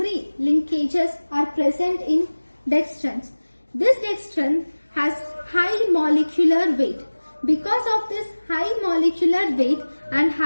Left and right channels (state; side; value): inverted; both; correlation -1.00